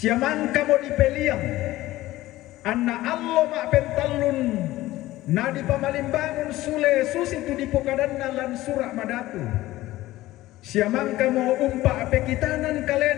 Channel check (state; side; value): quieter; right; 16.6 dB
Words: mo dipeliang anna allo ma pentalun na di pamalimbangun sule susi tu di pokadanna lan surak madatu siamangka mo umpa pekitanan